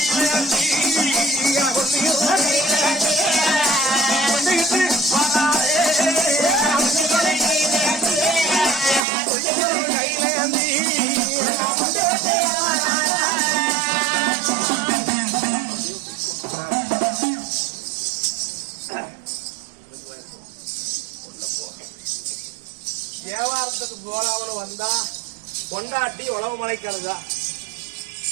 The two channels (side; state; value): left; drops out; at 9.1 s